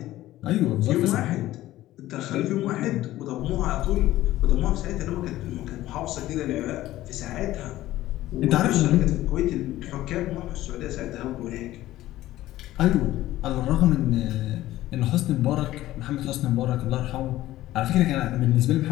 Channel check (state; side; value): quieter; right; 15.3 dB